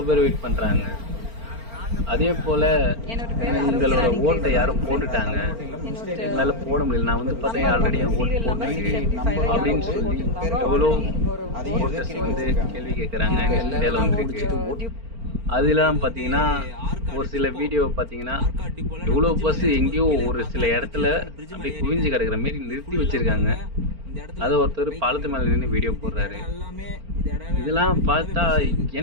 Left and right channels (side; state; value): left; late; 4.4 ms